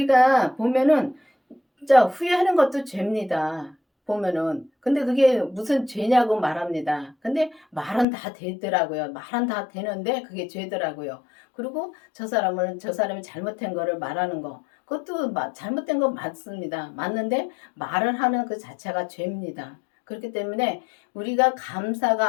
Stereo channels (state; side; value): drops out; right; at 8.1 s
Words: 보면은 진짜 후회하는 것도 죄입니다. 보면은. 근데 그게 무슨 죄냐고 말합니다. 근데 말은 다 되더라고요. 말은 다 되는데 그게 죄더라고요. 그리고 저 사람이 잘못한 거를 말하는 거. 그것도 잘못된 건 맞습니다. 맞는데 말을 하는 그 자체가 죄입니다. 그렇기 때문에 우리가